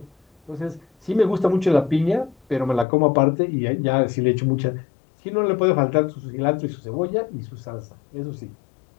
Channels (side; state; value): right; drops out; at 2.9 s